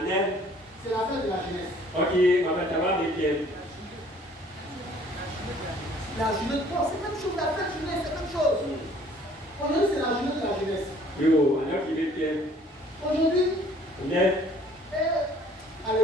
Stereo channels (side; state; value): both; normal; correlation 0.56